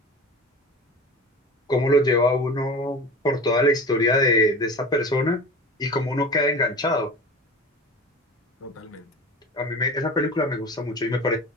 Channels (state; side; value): normal; both; correlation 0.34